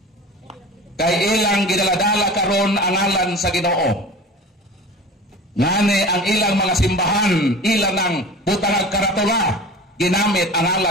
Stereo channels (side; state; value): both; normal; correlation 0.37